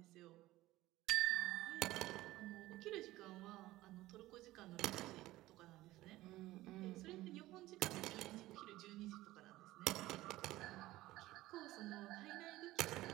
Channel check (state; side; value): quieter; left; 17.1 dB